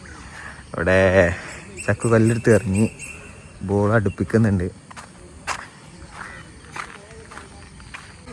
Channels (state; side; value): identical; both; correlation 1.00